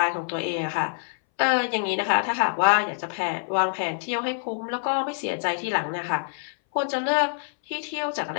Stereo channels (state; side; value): silent; right; 60 dB below the other